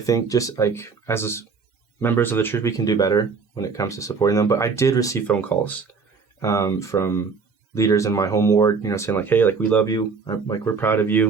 think just like as members of the church, we can do better when it comes to supporting them. But I did receive phone calls from leaders in my home ward, saying like, hey, like, we love you. Like, we're proud of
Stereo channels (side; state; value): left; quieter; 5.0 dB